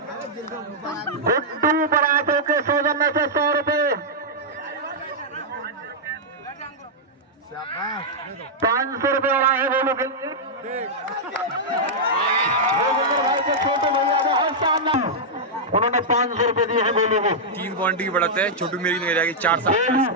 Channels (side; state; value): both; normal; correlation -0.07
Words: गुड्डू बरातों के सौजन्य से 100 रुपए। 500 रुपए और आए गोलू के लिए। भाई के छोटे भैया बहुत शानदार। उन्होंने 500 रुपए दिए हैं गोलू को। 3 पॉइंट की बढ़त है, छोटू मेरी की नगरिया की